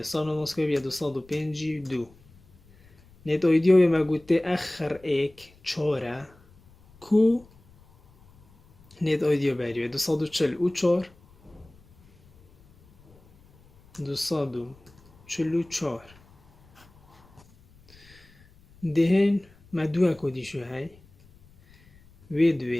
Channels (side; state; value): left; noise; rumble, 28 dB below the sound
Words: سانو مسکوی بیا 252 نت اویدیو به مگوته اخر ایک چاره کو نت اویدیو بریوه 244 244 دهن ما دو کدی شو های و